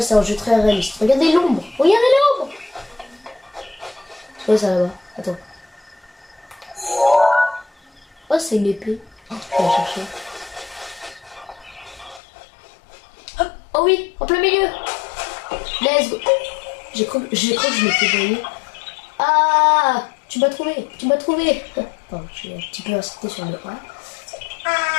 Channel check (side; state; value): right; drops out; at 12.2 s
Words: c'est un jeu très réaliste. Regardez l'ombre. Regardez l'ombre. C'est quoi ça là-bas? Attends. Oh, c'est une épée. Oh, je vais la chercher. Oh oui, en plein milieu. Let's go. J'ai cru que je m'étais grillé. Ah, tu m'as trouvé. Pardon, j'ai un petit peu insisté sur le A.